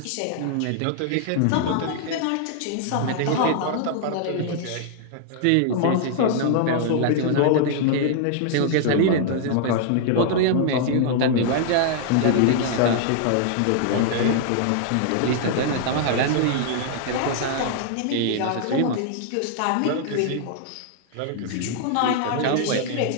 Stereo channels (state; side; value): different; both; correlation -0.01